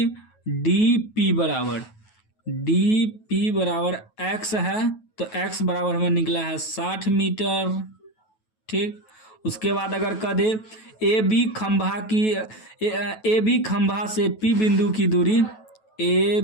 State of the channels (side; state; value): right; late; 9.2 ms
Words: dp बराबर x है, तो x बराबर हमें निकला है 60 मीटर। ठीक, उसके बाद अगर कह दे ए बी खंभा से p बिंदु की दूरी, ए